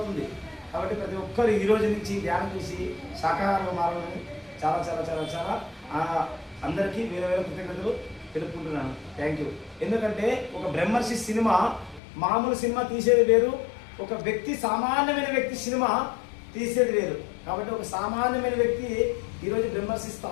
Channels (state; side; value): drops out; right; at 12.0 s